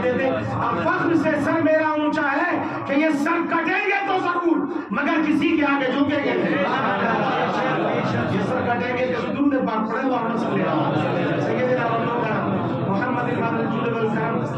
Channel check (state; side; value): identical; both; correlation 1.00